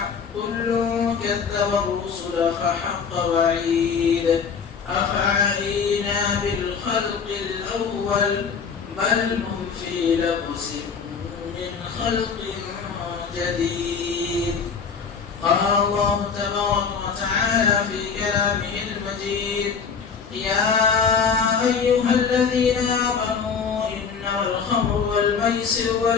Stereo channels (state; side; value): quieter; right; 6.0 dB